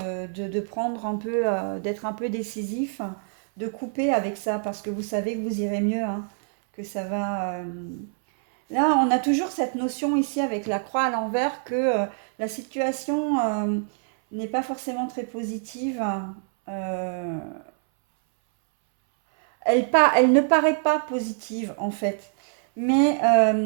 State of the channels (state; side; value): silent; left; 62 dB below the other